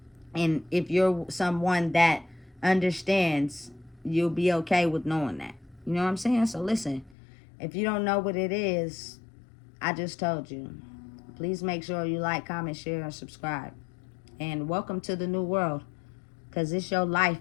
And if you're someone that understands, you'll be okay with knowing that. You know what I'm saying? So listen, if you don't know what it is, I just told you. Please make sure you like, comment, share, and subscribe. And welcome to the new world, because it's your life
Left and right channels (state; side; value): drops out; right; at 7.2 s